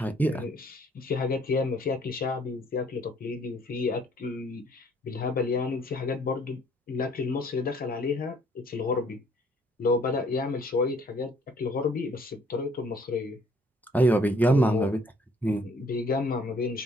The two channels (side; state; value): both; normal; correlation 0.61